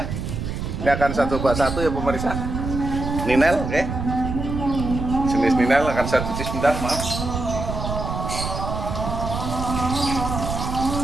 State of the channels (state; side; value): noise; right; rumble, 4 dB below the sound